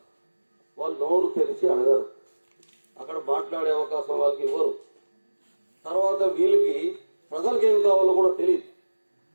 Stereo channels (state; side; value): inverted; both; correlation -1.00